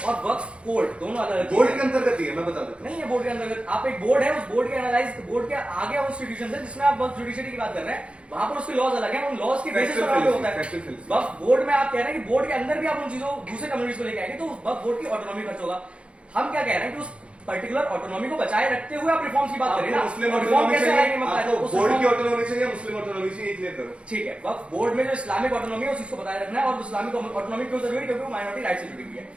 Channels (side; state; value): left; late; 0.059 ms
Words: और वक्फ कोर्ट दोनों अलग बोर्ड के अंतर्गत ही है, मैं बता देता हूँ। नहीं है बोर्ड के अंतर्गत। आप एक बोर्ड है, उस बोर्ड के एनालाइज बोर्ड के आगे वो इंस्टीट्यूशन है जिसमें आप वक्फ जुडिशरी की बात कर रहे हैं, वहां पर उसके लॉज अलग है, उन लॉज की बेसिस पर होता है। वक्फ बोर्ड में आप कह रहे हैं कि बोर्ड के अंदर भी आप उन चीजों दूसरे कम्युनिटीज को लेके आएंगे, तो वक्फ बोर्ड की ऑटोनॉमी खर्च होगा। हम क्या कह रहे हैं कि उस पर्टिकुलर ऑटोनॉमी को बचाए रखते हुए आप रिफॉर्म्स की बात करें ना। मुस्लिम रिफॉर्म कैसे आएंगे? बोर्ड की ऑटोनॉमी चाहिए, मुस्लिम ऑटोनॉमी चाहिए, क्लियर करो। ठीक है, वक्फ बोर्ड में जो इस्लामिक ऑटोनॉमी है उस चीज को बताए रखना है, और इस्लामिक ऑटोनॉमी क्यों जरूरी है? क्योंकि वो माइनॉरिटी राइट से जुड़ी हुई है।